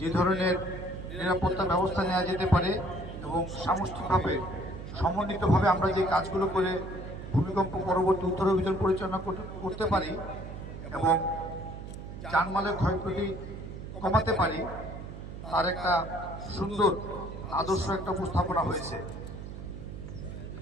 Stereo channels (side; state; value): right; noise; hum, 10 dB below the sound